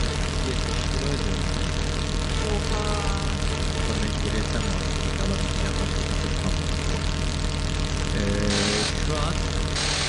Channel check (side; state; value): both; identical; correlation 1.00